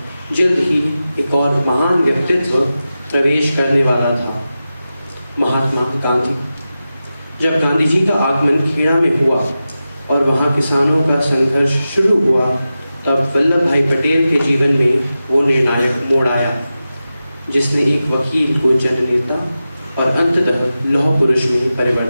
जल्द ही एक और महान व्यक्तित्व प्रवेश करने वाला था, महात्मा गांधी। जब गांधी जी का आगमन खेड़ा में हुआ और वहाँ किसानों का संघर्ष शुरू हुआ, तब वल्लभ भाई पटेल के जीवन में वो निर्णायक मोड़ आया, जिसने एक वकील को जननेता और अंततः लौह पुरुष में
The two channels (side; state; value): both; inverted; correlation -0.93